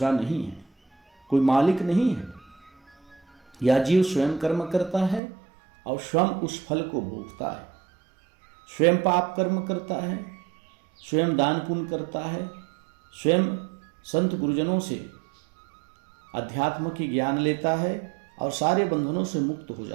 नहीं है, कोई मालिक नहीं है। यह जीव स्वयं कर्म करता है और स्वयं उस फल को भोगता है। स्वयं पाप कर्म करता है, स्वयं दान पुण्य करता है, स्वयं संत गुरुजनों से अध्यात्म की ज्ञान लेता है और सारे बंधनों से मुक्त हो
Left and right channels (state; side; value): drops out; left; at 5.2 s